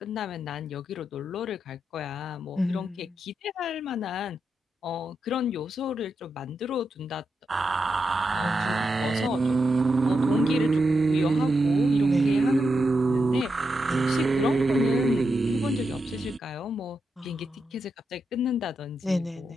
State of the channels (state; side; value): normal; both; correlation 0.85